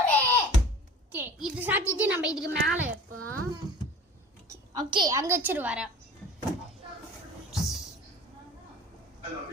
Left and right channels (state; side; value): normal; both; correlation 0.42